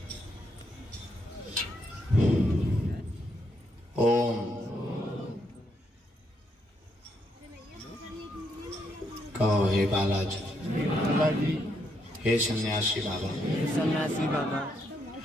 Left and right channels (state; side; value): normal; both; correlation 0.77